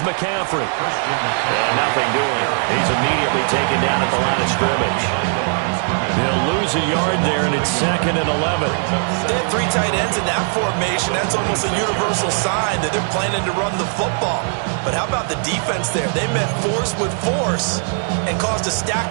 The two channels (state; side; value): silent; left; 56 dB below the other